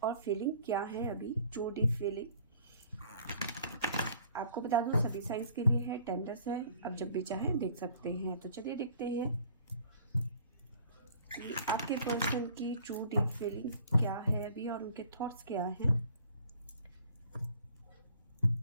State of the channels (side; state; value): both; inverted; correlation -0.54